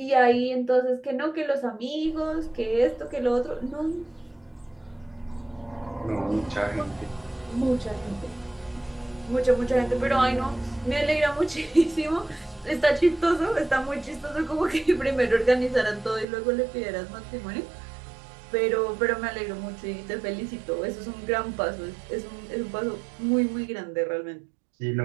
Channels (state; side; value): drops out; left; at 16.2 s